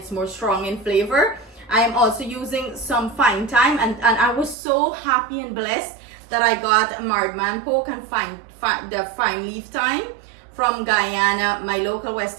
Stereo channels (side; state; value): left; drops out; at 4.5 s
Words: more strong in flavor. I am also using some fine thyme, and I was so happy and blessed that I got marred man poke and the fine leaf thyme from Guyana. My local